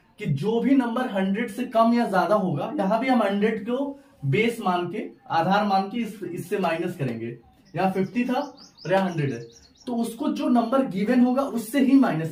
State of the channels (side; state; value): both; identical; correlation 1.00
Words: कि जो भी नंबर 100 से कम या ज्यादा होगा, यहाँ भी हम 100 को बेस मान के, आधार मान के इससे माइनस करेंगे। यहाँ 50 था और यहाँ 100 है, तो उसको जो नंबर गिवन होगा उससे ही